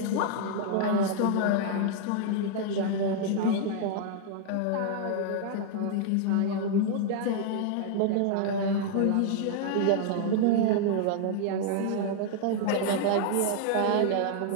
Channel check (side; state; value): both; different; correlation -0.01